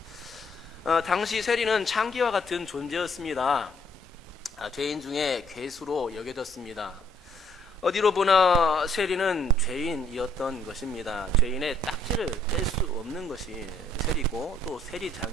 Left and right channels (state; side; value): normal; both; correlation 0.66